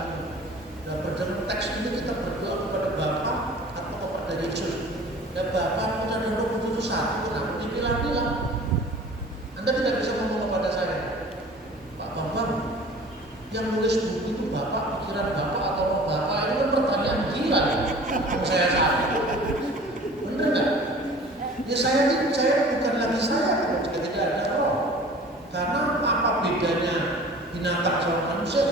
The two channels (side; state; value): both; normal; correlation 0.45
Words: Dan dalam teks ini kita berdoa kepada Bapa atau kepada Yesus. Dan Bapa, Putra, dan Roh Kudus itu satu. Nah, dibilang-bilang. Anda tidak bisa ngomong kepada saya, Pak Bambang, yang nulis buku itu Bapak, pikiran Bapak atau Roh Bapak, itu kan pertanyaan gila ya. Saya salah. Benar nggak? Ya saya bukan lagi saya kalau jika tidak ada roh. Karena apa bedanya binatang sama manusia?